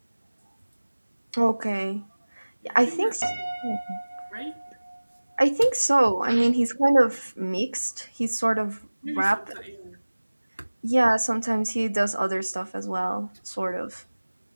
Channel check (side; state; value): both; inverted; correlation -1.00